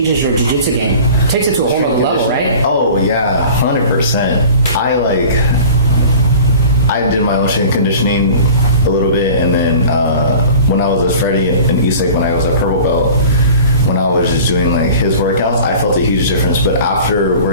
your jiu-jitsu game? It takes it to a whole other level, right? Oh yeah, 100%. I did my own strength conditioning a little bit, and then when I was with Freddie in East Lake, when I was a purple belt, when I was just doing like his workouts, I felt a huge difference. But after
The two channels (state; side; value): inverted; both; correlation -0.42